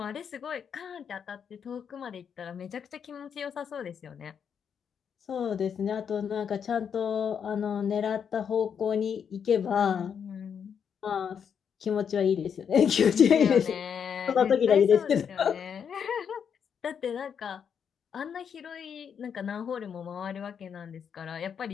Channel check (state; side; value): quieter; right; 7.4 dB